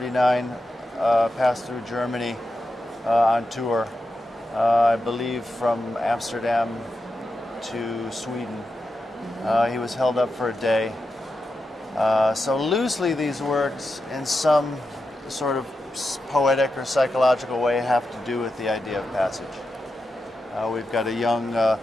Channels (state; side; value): normal; both; correlation 0.89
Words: passed through Germany on tour, I believe from Amsterdam to Sweden. He was held up for a day. So loosely these works in some sort of poetic or psychological way have to do with the idea of passage. We've got a young